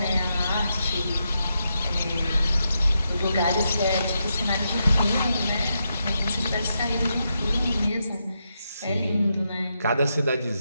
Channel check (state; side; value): inverted; both; correlation -0.84